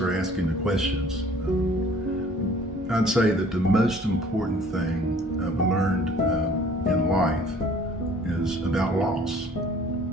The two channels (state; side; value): normal; both; correlation 0.53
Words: asking the questions. I'd say that the most important thing I've learned in life is about loss